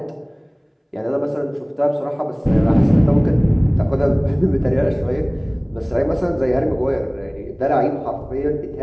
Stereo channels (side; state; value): both; identical; correlation 1.00